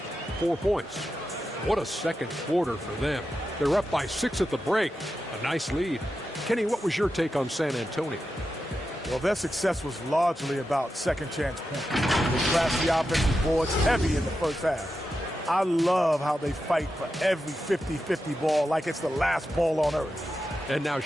4 points. What a second quarter for them. They're up by 6 at the break. A nice lead. Kenny, what was your take on San Antonio? Well, their success was largely about second chance points. They crashed the offensive boards heavy in the first half. I love how they fight for every 50-50 ball like it's the last ball on earth. And now,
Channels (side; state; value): both; normal; correlation 0.90